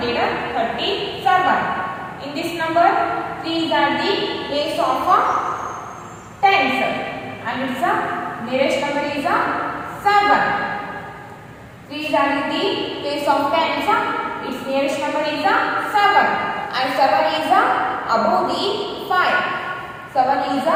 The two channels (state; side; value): identical; both; correlation 1.00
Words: In this number, 3 are the place of tens and its nearest number is 7. 3 are the place of tens, its nearest number is 7 and 7 is above the 5. 7 is